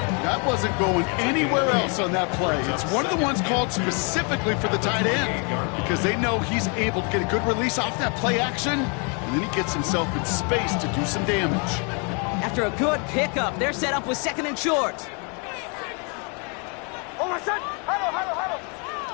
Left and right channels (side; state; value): right; quieter; 35.7 dB